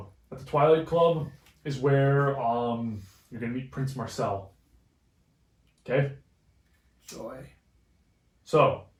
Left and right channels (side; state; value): both; identical; correlation 1.00